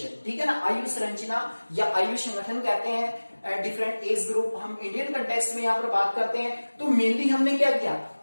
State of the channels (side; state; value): both; inverted; correlation -1.00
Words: ठीक है ना। आयु संरचना या आयु संगठन कहते हैं डिफरेंट एज ग्रुप। हम इंडियन कंटेक्स्ट में यहाँ पर बात करते हैं तो मेनली हमने क्या किया,